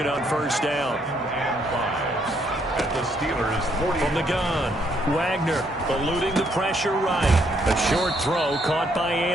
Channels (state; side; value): normal; both; correlation 0.71